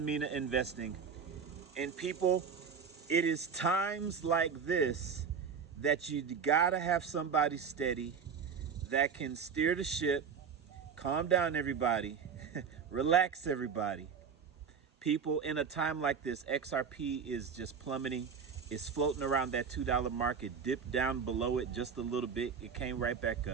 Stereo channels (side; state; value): left; quieter; 6.3 dB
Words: Mina Investing. And people, it is times like this that you gotta have somebody steady that can steer the ship, calm down everybody, relax everybody. People, in a time like this, XRP is just plummeting. It's floating around that $2 mark. It dipped down below it just a little bit. It came right back